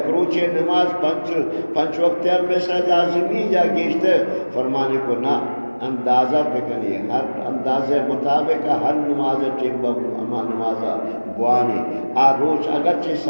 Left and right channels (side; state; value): both; inverted; correlation -1.00